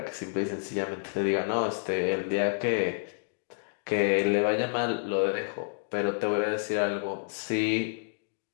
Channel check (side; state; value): right; silent; digital silence